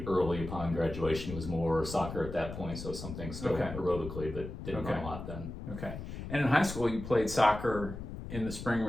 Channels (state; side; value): noise; left; rumble, 9 dB below the sound